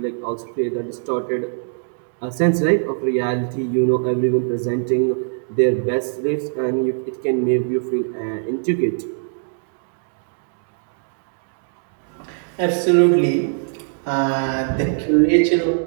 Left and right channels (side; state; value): left; silent; digital silence